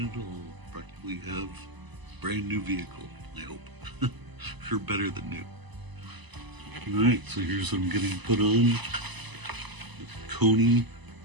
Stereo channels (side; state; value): left; late; 1.0 ms